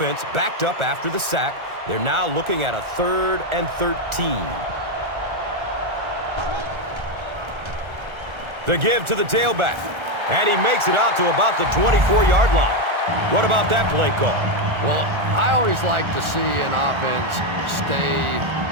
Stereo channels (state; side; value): late; left; 1.3 ms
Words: backed up after the sack. They're now looking at a 3rd and 13. The give to the tailback, and he makes it out to about the 24-yard line. What about that play call? Well, I always like to see an offense stay